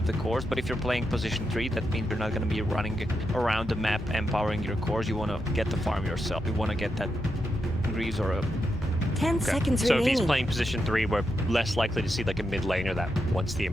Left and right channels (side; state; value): both; normal; correlation 0.85